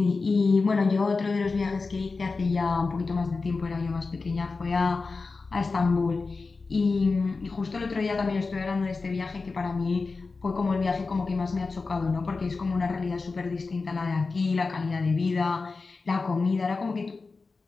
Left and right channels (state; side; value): quieter; right; 4.1 dB